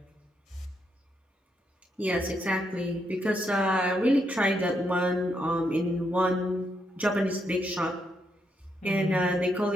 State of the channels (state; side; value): normal; both; correlation 0.78